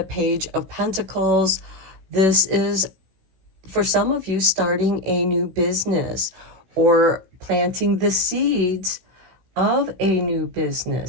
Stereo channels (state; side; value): late; left; 16 ms